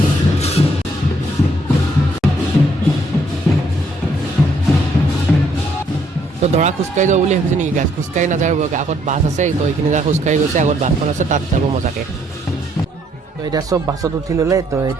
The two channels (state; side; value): normal; both; correlation 0.69